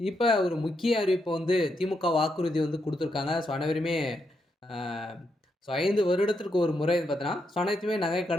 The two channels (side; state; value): both; normal; correlation 0.81